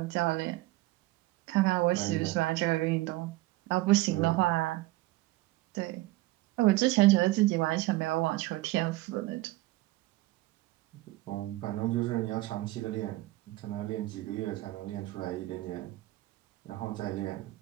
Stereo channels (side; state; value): left; quieter; 18.6 dB